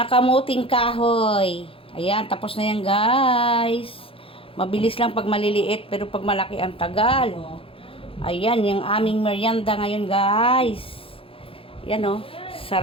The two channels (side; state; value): right; late; 0.27 ms